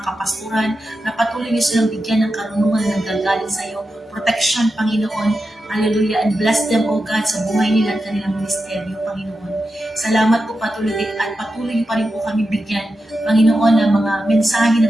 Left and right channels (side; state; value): both; normal; correlation 0.90